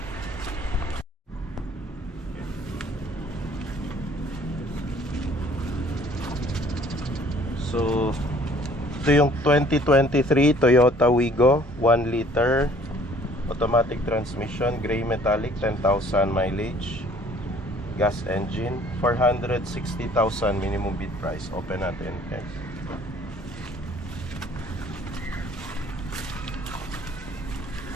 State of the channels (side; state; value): both; normal; correlation 0.56